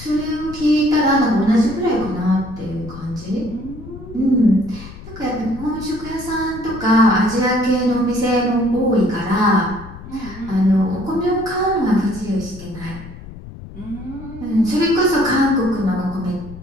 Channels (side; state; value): left; noise; rumble, 15 dB below the sound